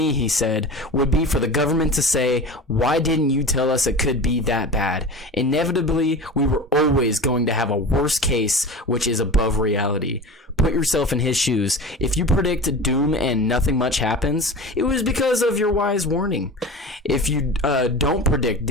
he said, would be for the government to say, why didn't you tell us it could be that bad? Inevitably, we were always going to have a worst case, which is above reality. Put yourself in his shoes. If you predict doom and nothing much happens, it was because of your wise warning. If you don't predict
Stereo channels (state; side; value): normal; both; correlation 0.33